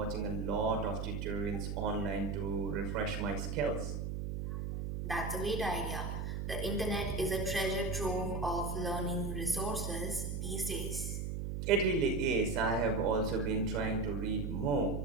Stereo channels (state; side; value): noise; right; hum, 3 dB below the sound